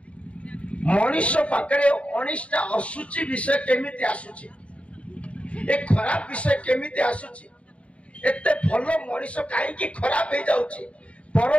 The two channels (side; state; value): right; late; 0.063 ms